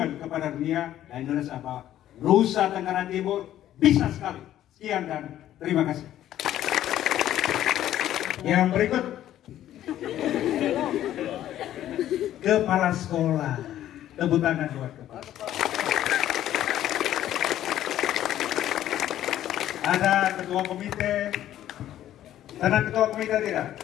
kepada dunia dan Indonesia bahwa Nusa Tenggara Timur bisa sekali. Sekian dan terima kasih. Yang berikut, kepala sekolah. Tepuk tangan buat kepala. Ada ketua komite. Tenang ketua komite tidak?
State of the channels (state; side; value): quieter; right; 12.3 dB